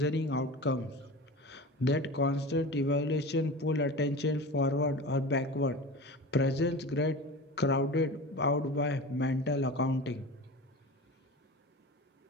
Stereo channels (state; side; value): normal; both; correlation 0.32